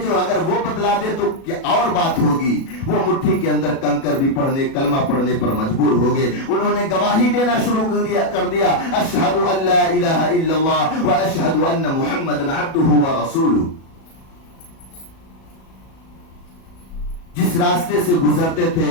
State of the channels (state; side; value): late; right; 37 ms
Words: جو اگر وہ بتلا دے تو کیا اور بات ہوگی۔ وہ مٹھی کے اندر کنکر بھی کلمہ پڑھنے پر مجبور ہو گئے۔ انہوں نے گواہی دینا شروع کر دیا، اشہد ان لا الہ الا اللہ و اشہد ان محمد عبدہ و رسولہ۔ جس راستے سے گزرتے تھے